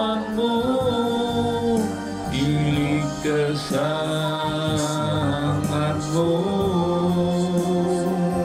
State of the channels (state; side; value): identical; both; correlation 1.00